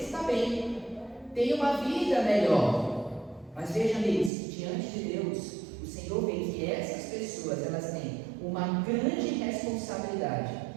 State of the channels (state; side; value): drops out; left; at 4.3 s